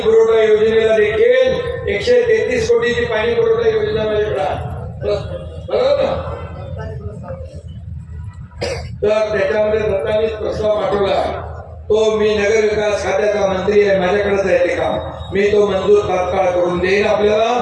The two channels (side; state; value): both; identical; correlation 1.00